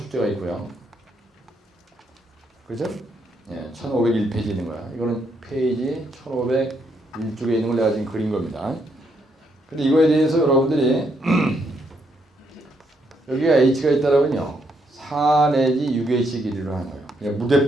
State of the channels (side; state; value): both; normal; correlation 0.75